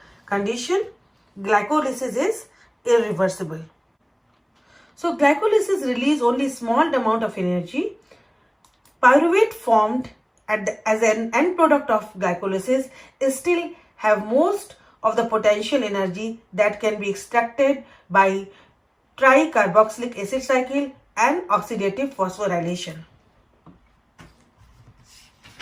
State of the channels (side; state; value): both; identical; correlation 1.00